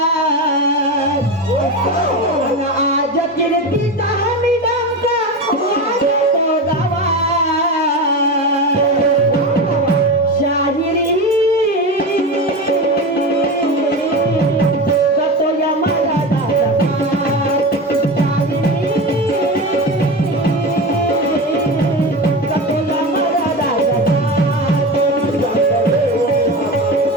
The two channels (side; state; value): both; normal; correlation 0.23